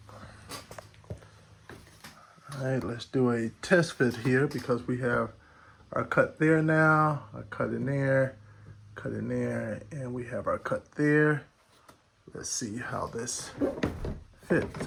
All right, let's do a test fit here because we have our cut there now, our cut in there, and we have our cut there. Let's see how this fits.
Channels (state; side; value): identical; both; correlation 1.00